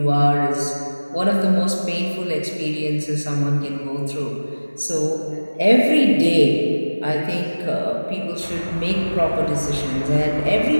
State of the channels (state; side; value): inverted; both; correlation -1.00